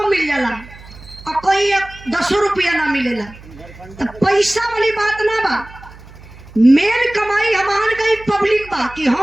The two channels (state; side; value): noise; right; hum, 19 dB below the sound